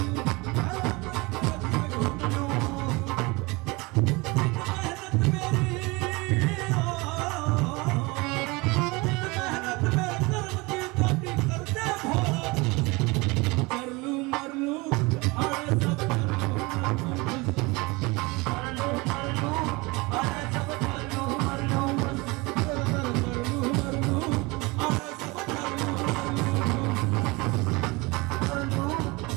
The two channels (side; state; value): left; quieter; 24.9 dB